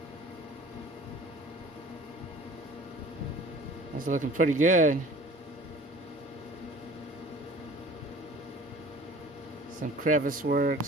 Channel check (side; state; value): both; normal; correlation 0.46